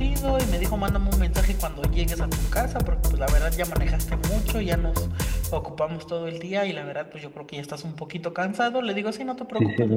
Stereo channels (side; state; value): both; identical; correlation 1.00